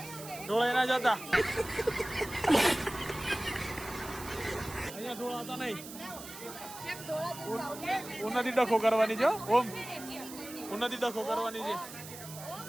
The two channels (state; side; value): noise; right; hiss, 13 dB below the sound